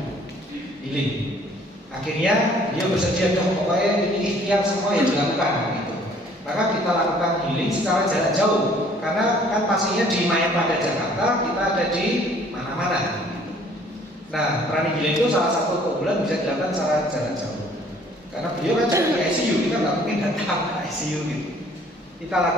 healing. Akhirnya dia bersedia, pokoknya ini ikhtiar semua yang dilakukan gitu. Maka kita lakukan healing secara jarak jauh, karena kan pastinya di Mayapada Jakarta, kita ada di mana-mana. Nah, pranic healing itu salah satu keunggulan bisa dilakukan secara jarak jauh. Karena beliau kan di ICU, kita nggak mungkin datang ke ICU gitu. Kita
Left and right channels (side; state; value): both; normal; correlation 0.57